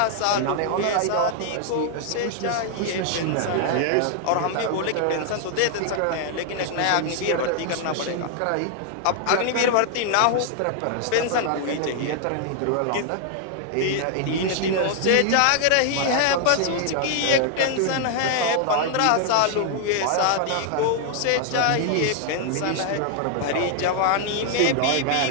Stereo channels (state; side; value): different; both; correlation 0.00